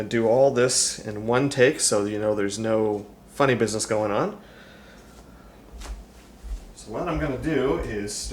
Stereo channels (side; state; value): both; identical; correlation 1.00